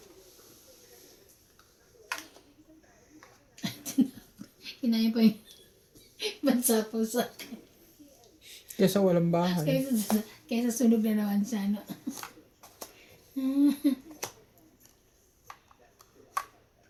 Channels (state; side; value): identical; both; correlation 1.00